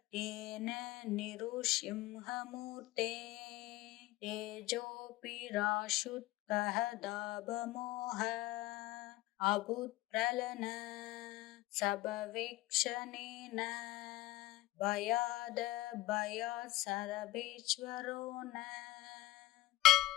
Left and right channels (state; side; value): quieter; right; 17.7 dB